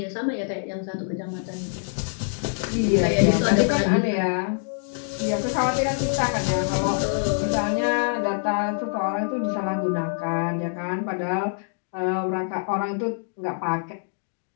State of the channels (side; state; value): right; silent; digital silence